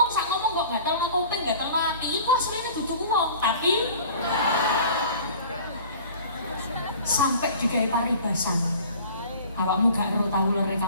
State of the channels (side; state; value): both; inverted; correlation -0.45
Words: sak ngomong kok gatel nang kuping, gatel nang ati, iku asline dudu wong, tapi sampai digawe paribasan. Awakmu gak ero tau lere